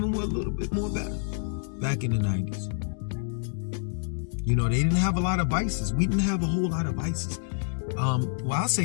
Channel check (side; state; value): right; silent; digital silence